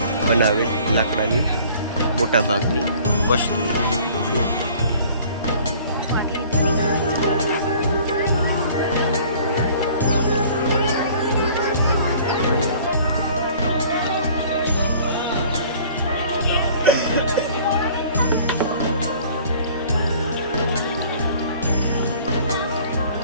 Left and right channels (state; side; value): inverted; both; correlation -0.51